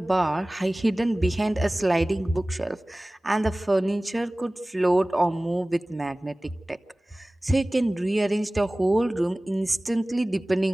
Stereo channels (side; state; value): both; normal; correlation 0.98